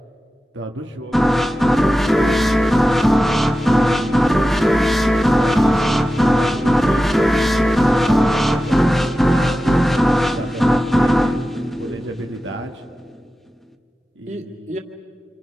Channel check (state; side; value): normal; both; correlation 0.94